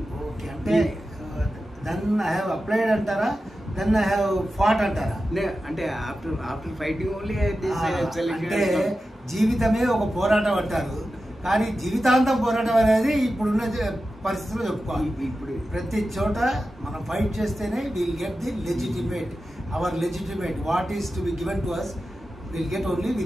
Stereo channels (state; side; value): normal; both; correlation 0.92